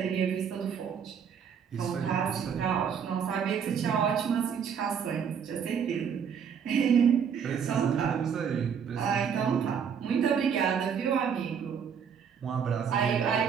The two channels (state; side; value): quieter; left; 7.3 dB